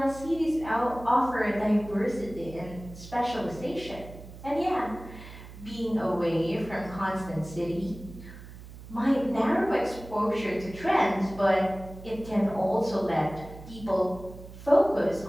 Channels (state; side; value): noise; right; hum, 15 dB below the sound